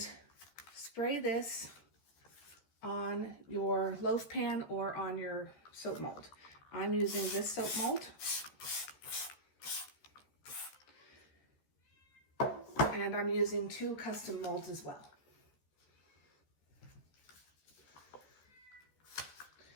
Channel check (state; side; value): late; right; 14 ms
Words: spray this on your loaf pan or on your soap mold. I'm using this soap mold. And I'm using 2 custom molds as well.